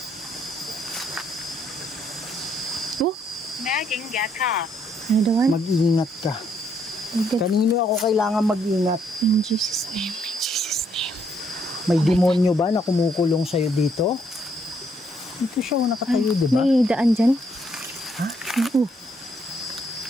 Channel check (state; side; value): normal; both; correlation 0.71